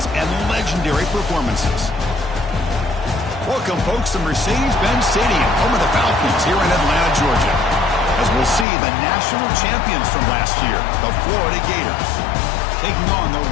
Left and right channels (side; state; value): right; drops out; at 8.7 s